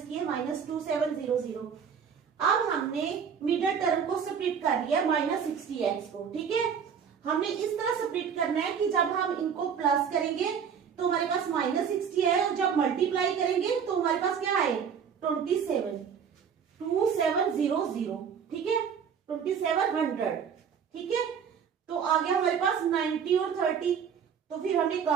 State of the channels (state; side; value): quieter; left; 7.2 dB